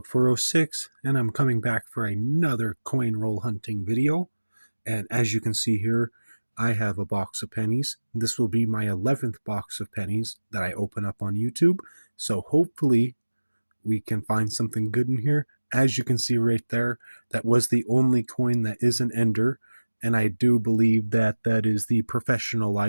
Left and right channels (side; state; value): both; inverted; correlation -1.00